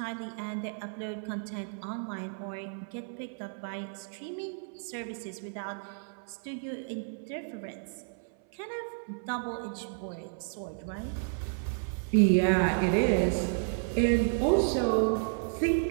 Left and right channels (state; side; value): silent; left; 57 dB below the other